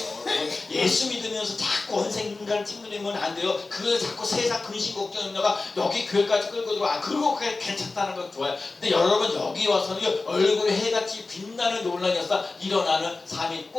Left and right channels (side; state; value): right; quieter; 3.6 dB